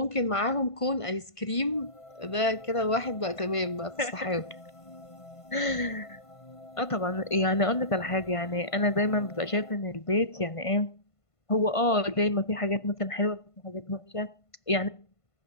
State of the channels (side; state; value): right; late; 1.5 ms